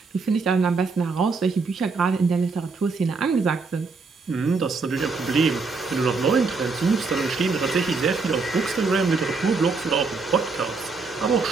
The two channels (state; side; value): quieter; left; 4.3 dB